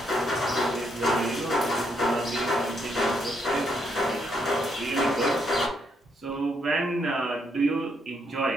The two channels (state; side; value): normal; both; correlation 0.75